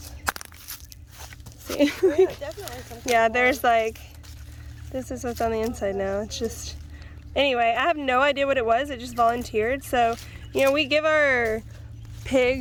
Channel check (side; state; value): both; identical; correlation 1.00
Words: See? Yeah, definitely some kind Yeah, of there's like, this is what's on the inside now. It's just, anyway, I have no idea what it was. It just volunteered. So, you know, we give our